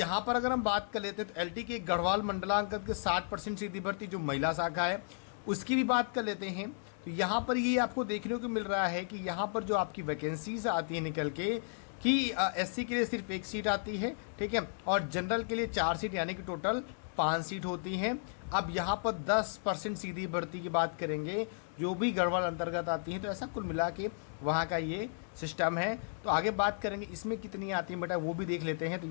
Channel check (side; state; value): right; silent; digital silence